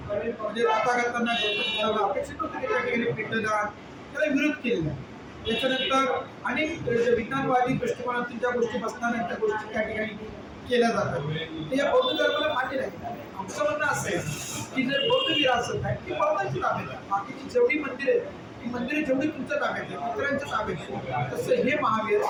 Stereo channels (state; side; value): identical; both; correlation 1.00